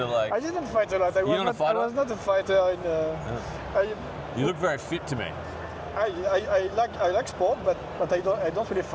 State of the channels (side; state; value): both; identical; correlation 1.00